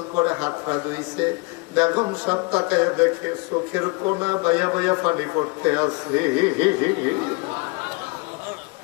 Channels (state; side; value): quieter; right; 28.3 dB